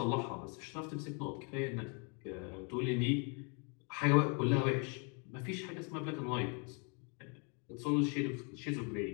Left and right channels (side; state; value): right; quieter; 36.1 dB